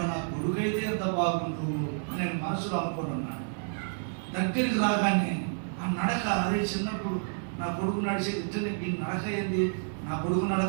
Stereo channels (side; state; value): left; silent; digital silence